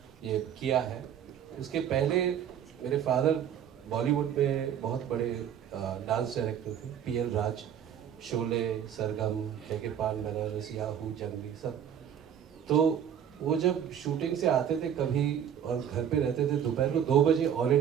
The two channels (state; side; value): quieter; left; 9.1 dB